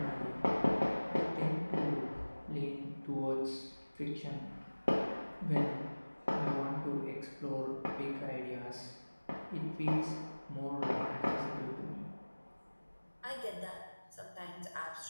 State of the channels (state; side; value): inverted; both; correlation -1.00